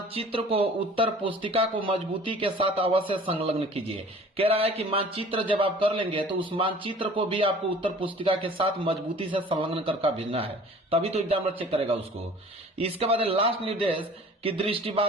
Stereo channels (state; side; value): normal; both; correlation 0.47